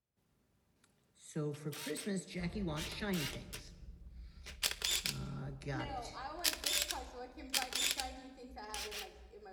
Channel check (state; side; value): identical; both; correlation 1.00